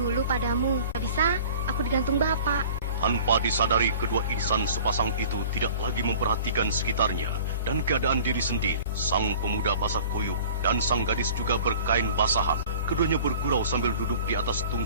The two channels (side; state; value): both; inverted; correlation -0.45